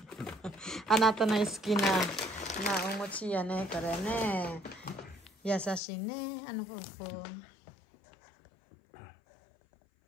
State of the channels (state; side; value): drops out; right; at 5.8 s